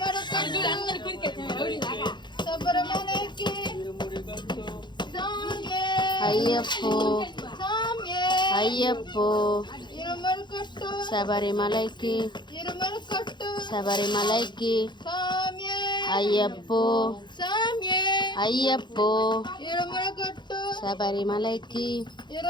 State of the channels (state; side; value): late; right; 0.22 ms